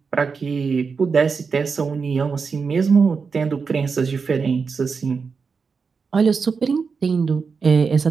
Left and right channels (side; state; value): left; quieter; 5.2 dB